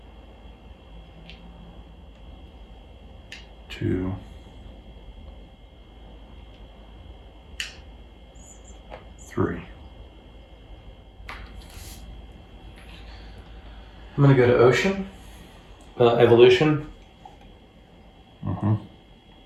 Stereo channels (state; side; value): identical; both; correlation 1.00